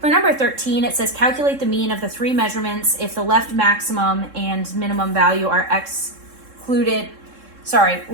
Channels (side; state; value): left; late; 3.7 ms